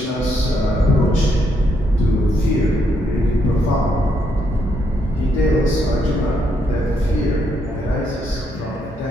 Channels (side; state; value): both; normal; correlation 0.75